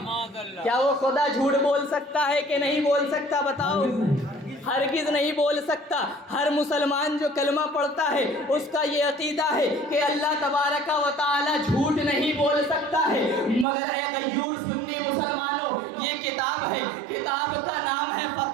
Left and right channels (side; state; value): left; drops out; at 13.7 s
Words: کیا وہ خدا جھوٹ بول سکتا ہے کہ نہیں بول سکتا؟ بتاؤ۔ ہرگز نہیں بول سکتا۔ ہر مسلمان جو کلمہ پڑھتا ہے اس کا یہ عقیدہ ہے کہ اللہ تبارک و تعالی جھوٹ نہیں بول سکتا ہے۔ مگر اے غیور سنی مسلمانوں، یہ کتاب ہے، کتاب کا نام ہے